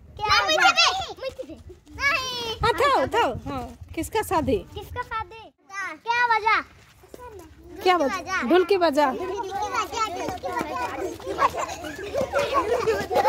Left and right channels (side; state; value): both; identical; correlation 1.00